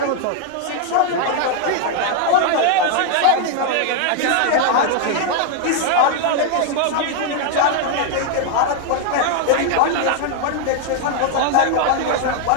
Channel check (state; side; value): different; both; correlation 0.00